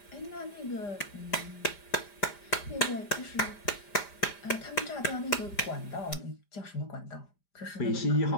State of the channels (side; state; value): right; late; 5.0 ms